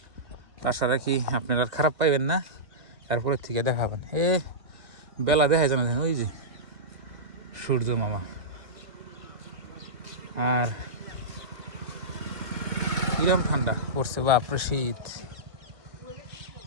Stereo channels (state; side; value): late; left; 2.1 ms